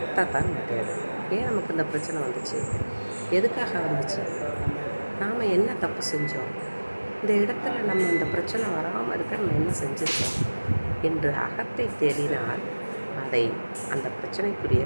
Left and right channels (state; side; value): inverted; both; correlation -1.00